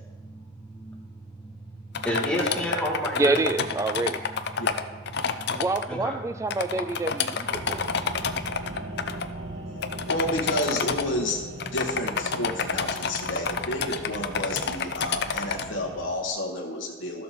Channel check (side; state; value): both; normal; correlation 0.09